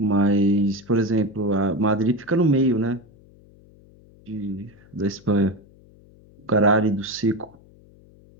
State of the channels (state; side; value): noise; left; hum, 26 dB below the sound